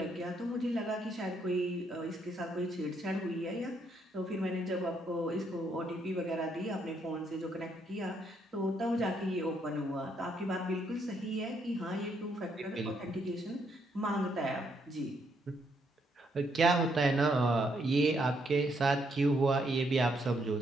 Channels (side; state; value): both; normal; correlation 0.74